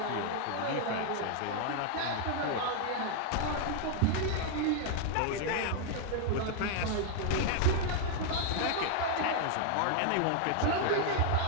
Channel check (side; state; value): both; different; correlation 0.00